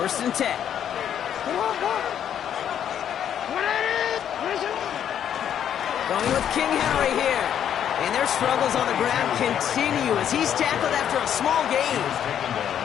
and 10. Going with King Henry here. And their struggles on the ground continue as he's tackled after a small gain.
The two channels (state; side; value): quieter; right; 9.5 dB